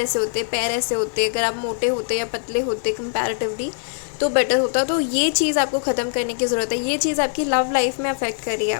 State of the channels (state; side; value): silent; right; digital silence